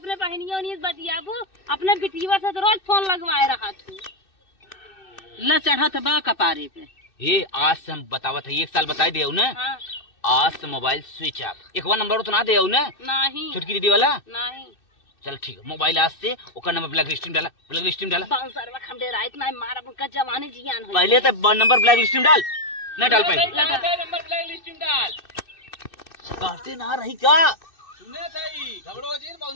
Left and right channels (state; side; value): late; right; 2.6 ms